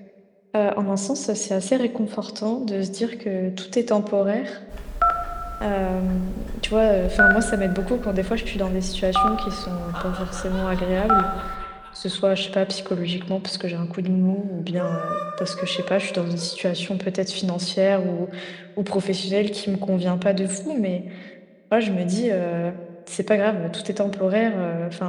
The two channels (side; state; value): both; identical; correlation 1.00